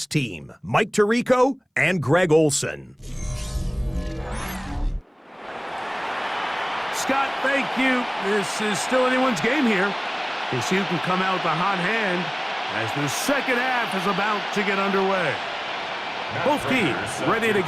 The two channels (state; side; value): identical; both; correlation 1.00